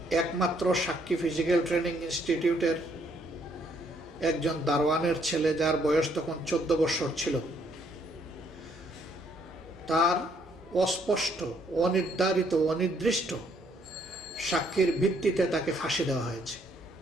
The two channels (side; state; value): both; normal; correlation 0.69